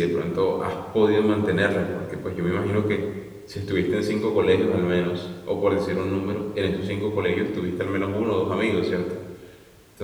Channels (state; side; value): identical; both; correlation 1.00